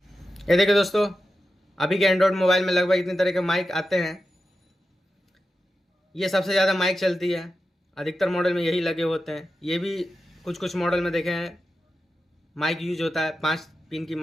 ये देखिए दोस्तों, अभी के एंड्रॉयड मोबाइल में लगभग इतने तरह के माइक आते हैं। ये सबसे ज़्यादा माइक चलती है, अधिकतर मॉडल में यही लगे होते हैं। ये भी कुछ मॉडल में देखे हैं माइक यूज होता है। 5 पिन की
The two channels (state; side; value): normal; both; correlation 0.91